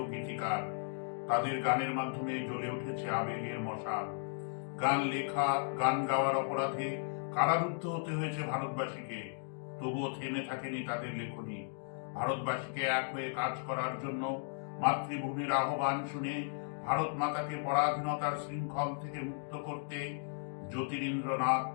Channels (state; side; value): silent; right; digital silence